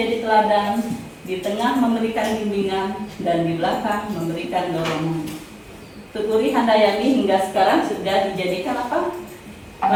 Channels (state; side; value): identical; both; correlation 1.00